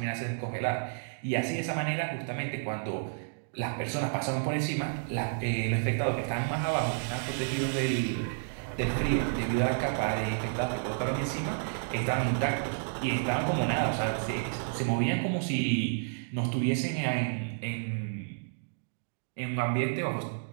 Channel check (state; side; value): silent; left; digital silence